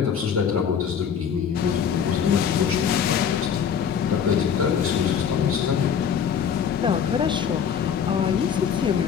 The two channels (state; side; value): quieter; right; 7.6 dB